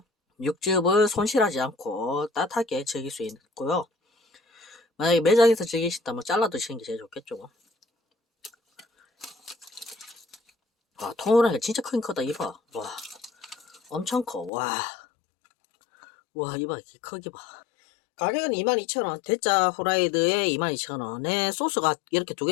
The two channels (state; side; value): drops out; right; at 14.5 s